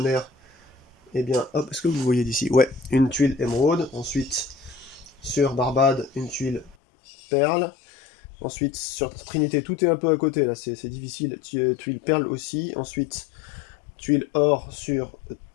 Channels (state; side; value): drops out; right; at 6.8 s